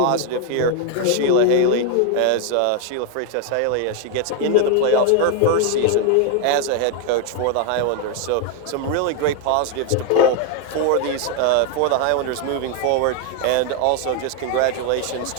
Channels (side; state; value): both; different; correlation 0.01